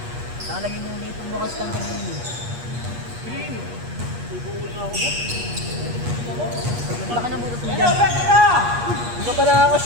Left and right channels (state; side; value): late; left; 8.4 ms